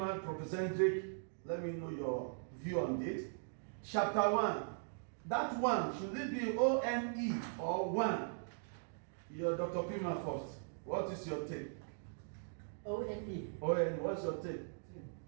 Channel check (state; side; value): silent; left; digital silence